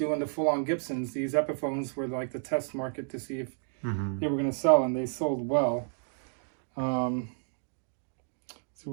the full-on Gibsons. These Epiphones were like the test market to see if they were going to sell, and they sold well. So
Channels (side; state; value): left; silent; digital silence